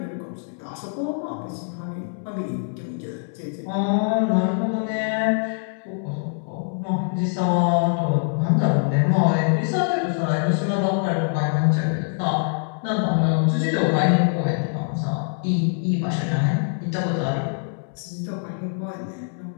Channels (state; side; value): silent; right; 63 dB below the other